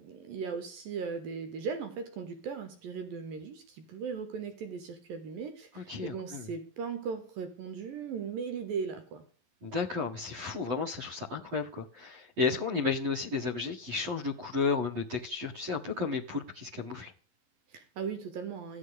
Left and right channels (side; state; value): left; late; 11 ms